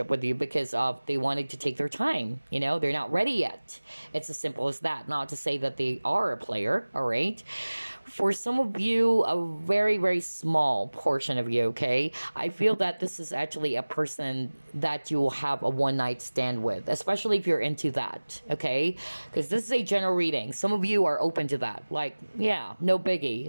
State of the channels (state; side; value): inverted; both; correlation -1.00